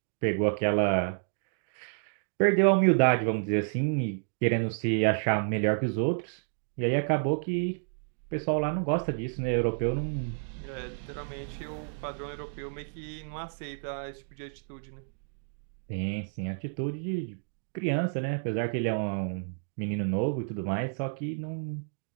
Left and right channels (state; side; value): silent; left; digital silence